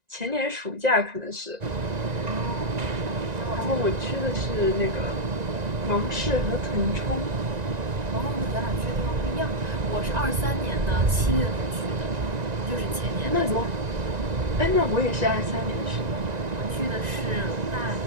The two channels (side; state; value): left; late; 1.9 ms